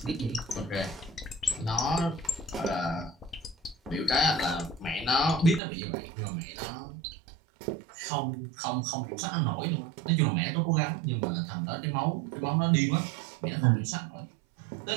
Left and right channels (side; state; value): left; drops out; at 5.6 s